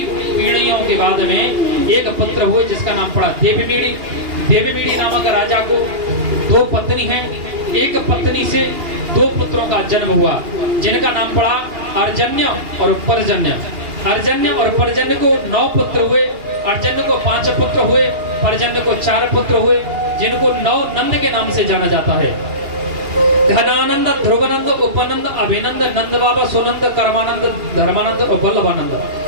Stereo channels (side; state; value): left; late; 2.8 ms